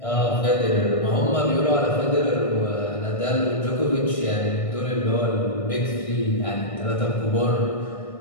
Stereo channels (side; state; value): right; late; 1.6 ms